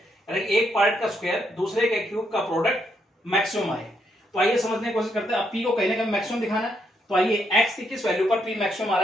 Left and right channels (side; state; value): both; normal; correlation 0.77